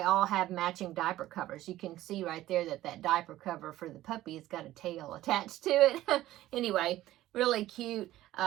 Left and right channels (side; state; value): left; quieter; 15.0 dB